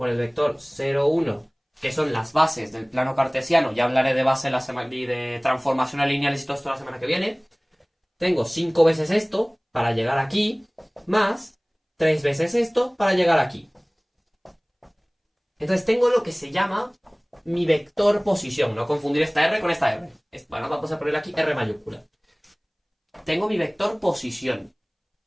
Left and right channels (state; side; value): identical; both; correlation 1.00